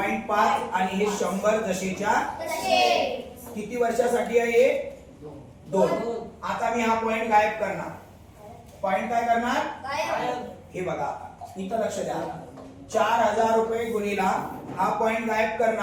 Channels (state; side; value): identical; both; correlation 1.00